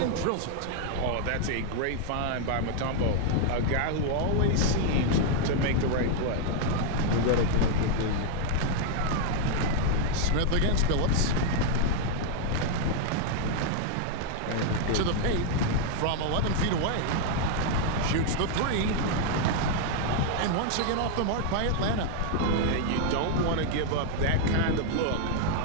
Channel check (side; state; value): both; different; correlation 0.00